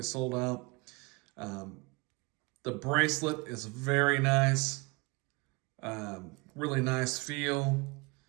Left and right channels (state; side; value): quieter; left; 26.8 dB